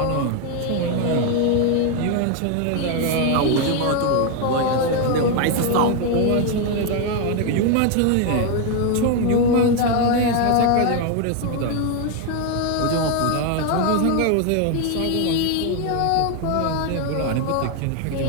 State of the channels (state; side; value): different; both; correlation 0.01